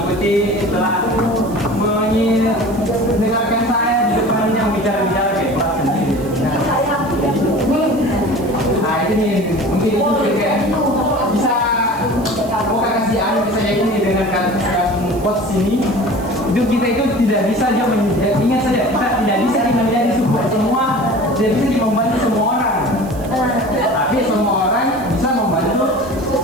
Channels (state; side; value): noise; right; hiss, 21 dB below the sound